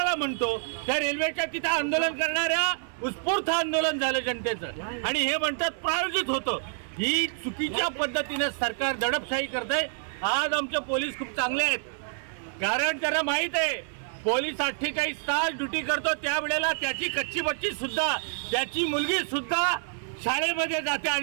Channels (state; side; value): silent; left; 58 dB below the other